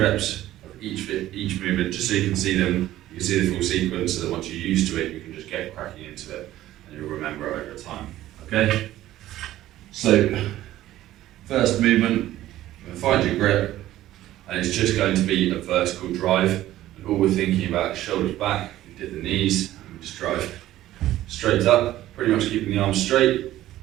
of each movement, just so you can see them. You can see the full sequence, so that once you're used to it, you can just get cracking into it, and you'll remember it over time. Okay. So first movement, find your grip, and it's just going to be a vertical drive. And all we're thinking about is shoulders back. We did the knees, and we just drive straight up, pretty much keeping the arms straight,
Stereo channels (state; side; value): quieter; left; 14.3 dB